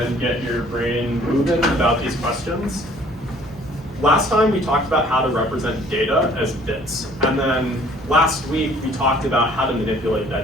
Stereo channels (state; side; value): normal; both; correlation 0.56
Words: get your brain moving about these questions. Last time we talked about how to represent data as bits, and then last week we talked about how to manipulate